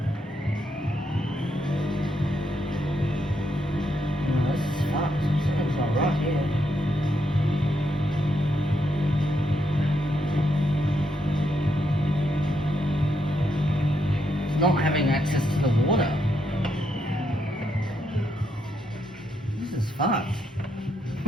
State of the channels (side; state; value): both; normal; correlation 0.79